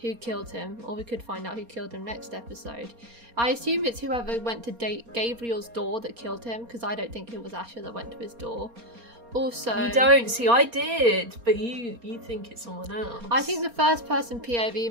who killed him, or we could find out who killed him next episode. I assume it's whoever went to Gabriel's door that killed him, because I don't think it was Asher that went to his door. Also, you don't see. I did, but you think it's someone else. I think the first person POV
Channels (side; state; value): left; late; 4.3 ms